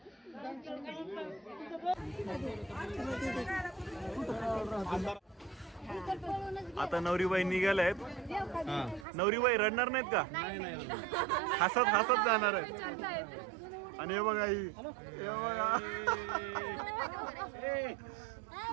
आता नवरीबाई निघाल्या आहेत. नवरीबाई रडणार नाहीत का? हसत हसत जाणार आहेत. आणि हे बघा ही, हे बघा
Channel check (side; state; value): left; drops out; at 9.1 s